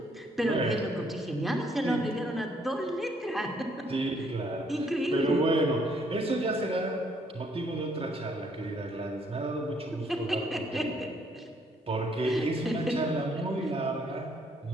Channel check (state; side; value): normal; both; correlation 0.67